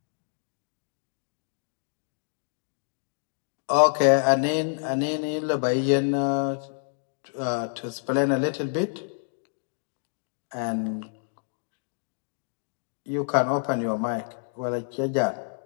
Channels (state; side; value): silent; right; digital silence